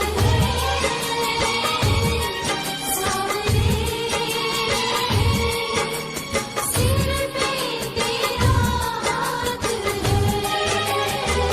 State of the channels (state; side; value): identical; both; correlation 1.00